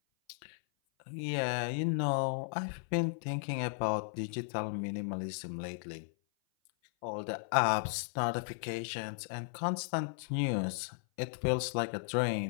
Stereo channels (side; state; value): right; silent; 54 dB below the other